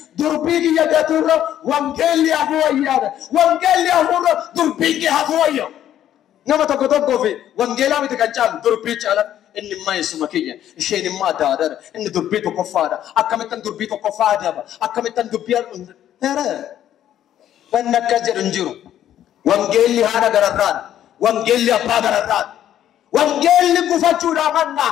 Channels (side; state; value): right; quieter; 11.3 dB